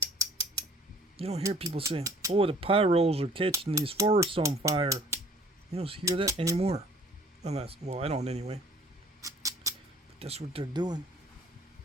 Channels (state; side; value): normal; both; correlation 0.54